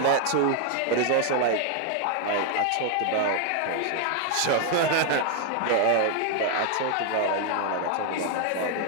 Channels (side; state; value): both; different; correlation 0.00